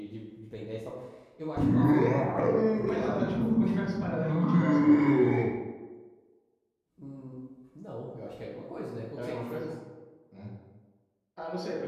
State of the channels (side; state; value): both; identical; correlation 1.00